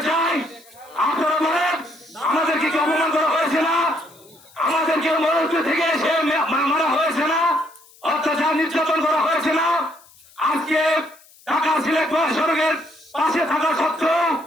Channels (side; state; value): left; noise; hiss, 26 dB below the sound